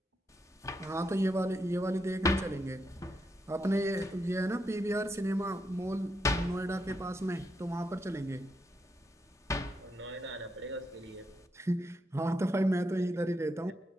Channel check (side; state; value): both; normal; correlation 0.82